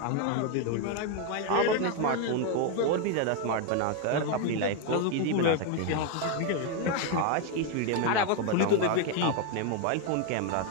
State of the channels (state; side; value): different; both; correlation 0.01